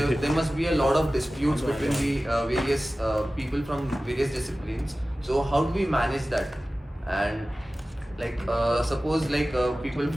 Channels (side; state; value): both; normal; correlation 0.96